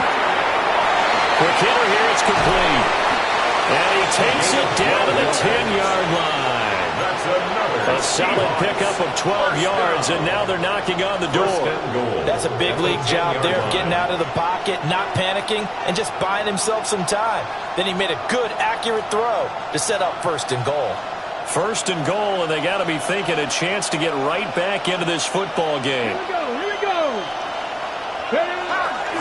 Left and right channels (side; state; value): both; identical; correlation 1.00